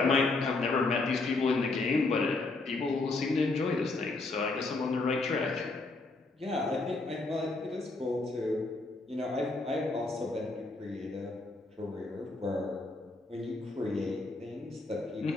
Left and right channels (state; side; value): quieter; right; 3.4 dB